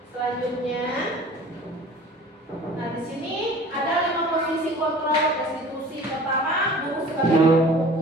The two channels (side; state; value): both; normal; correlation 0.45